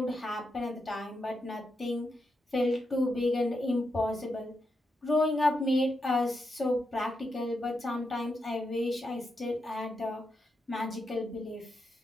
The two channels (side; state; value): both; normal; correlation 0.85